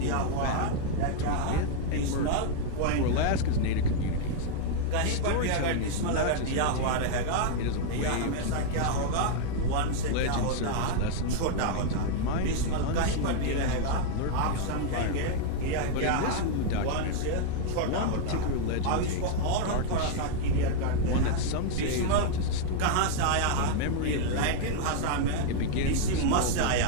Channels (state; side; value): different; both; correlation -0.01